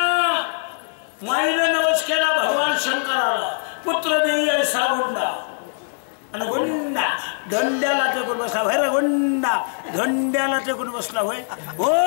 माईने नवस केला भगवान शंकराला. पुत्र देई ऐसा गुंडा आणि गुंडा धंड्याला टेकून बसला. होय रे गुंडा, धंड्याला टेकून बसला. होय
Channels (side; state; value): right; silent; digital silence